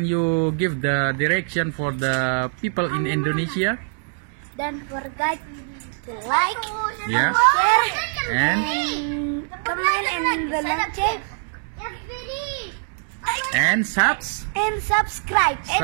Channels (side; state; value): left; silent; digital silence